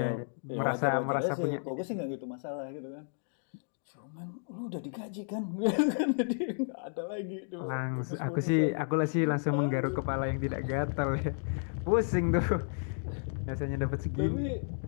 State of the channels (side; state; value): right; silent; digital silence